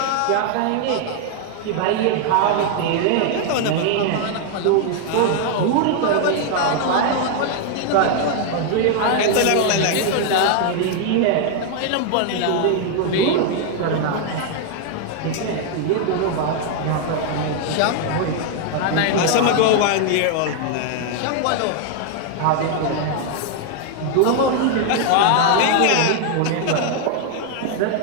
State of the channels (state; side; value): different; both; correlation 0.00